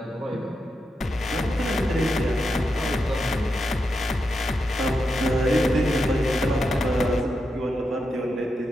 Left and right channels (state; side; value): normal; both; correlation 0.86